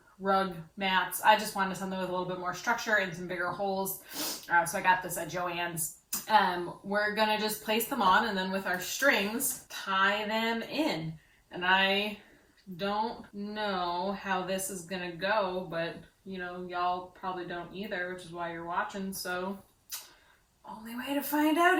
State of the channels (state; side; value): identical; both; correlation 1.00